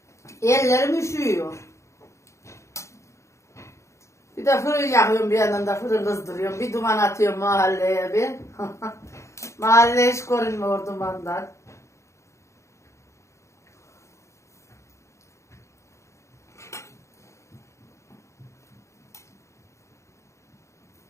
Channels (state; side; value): late; right; 0.14 ms